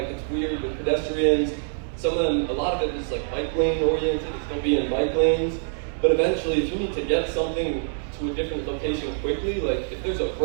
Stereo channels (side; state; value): left; silent; digital silence